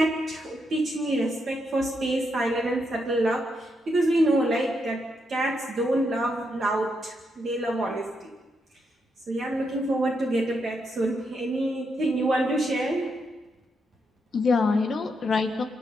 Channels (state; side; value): normal; both; correlation 0.81